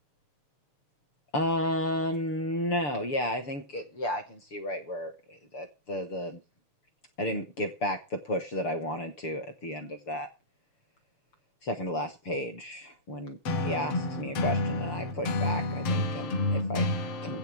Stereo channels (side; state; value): right; late; 6.9 ms